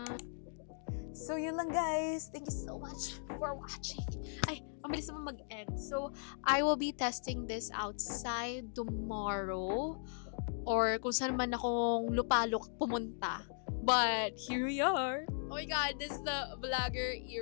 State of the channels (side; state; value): right; silent; digital silence